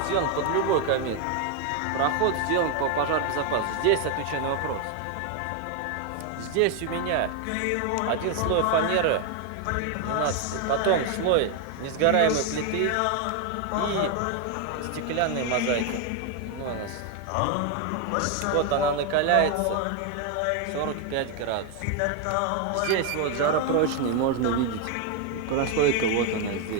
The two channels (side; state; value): both; different; correlation 0.01